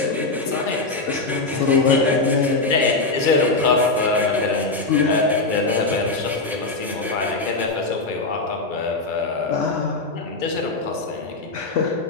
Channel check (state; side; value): quieter; right; 3.4 dB